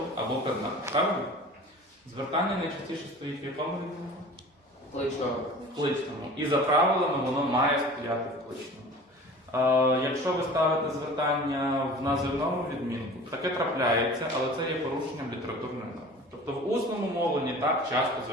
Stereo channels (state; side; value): normal; both; correlation 0.41